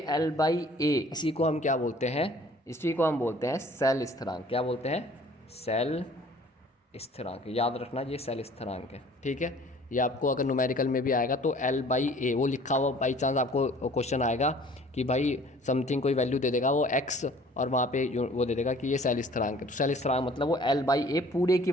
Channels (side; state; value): both; normal; correlation 0.52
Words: L/A, इसी को हम क्या बोलते हैं, इसी को हम बोलते हैं सेल स्थिरांक। क्या बोलते हैं, सेल स्थिरांक। याद रखना ये सेल स्थिरांक है। ठीक है। ये आपको अगर न्यूमेरिकल में भी आएगा तो L/A वो लिखा हुआ, बाई चांस आपको क्वेश्चन आएगा कि भाई समथिंग कोई वैल्यू दे देगा वो x, और वहाँ पे वो दे देगा कि ये सेल स्थिरांक है। तो सेल स्थिरांक मतलब वो L/A पूरे की